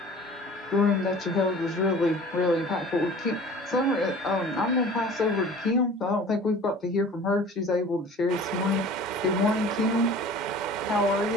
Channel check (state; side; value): normal; both; correlation 0.44